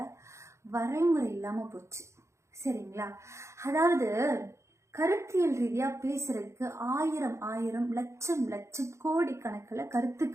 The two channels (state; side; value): late; left; 0.14 ms